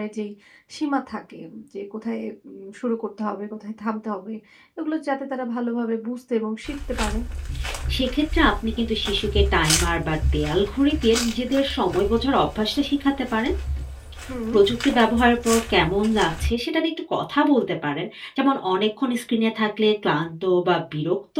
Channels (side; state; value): both; identical; correlation 1.00